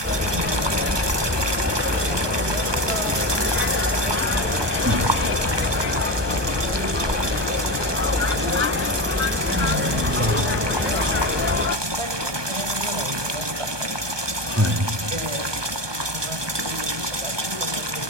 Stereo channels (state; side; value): late; left; 1.2 ms